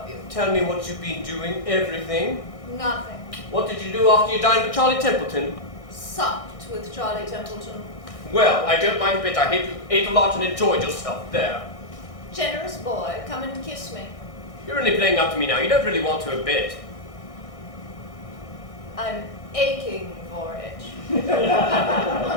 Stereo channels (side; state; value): right; late; 1.6 ms